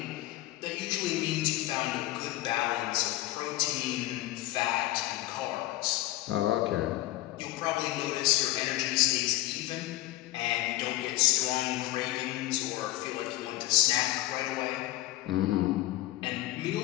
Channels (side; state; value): right; quieter; 16.2 dB